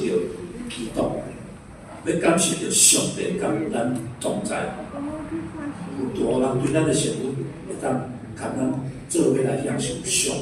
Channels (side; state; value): both; identical; correlation 1.00